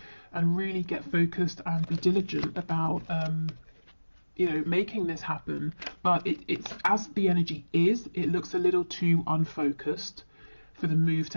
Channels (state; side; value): inverted; both; correlation -1.00